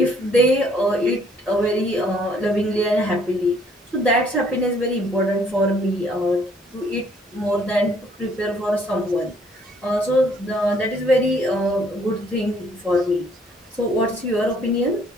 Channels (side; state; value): both; normal; correlation 0.63